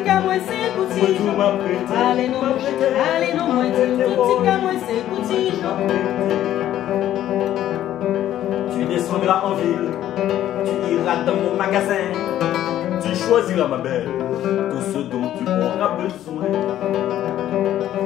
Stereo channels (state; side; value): quieter; right; 12.2 dB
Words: qu'à moi, c'est petit. Allez, non, allez, non, moi, tout ce qu'à moi, c'est petit. Tu descendras en ville. Tu iras dans mon magasin. Tu choisiras, ma belle, tout ce dont tu auras besoin.